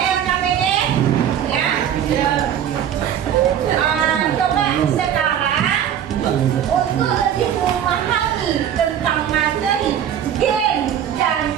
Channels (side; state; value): left; quieter; 9.6 dB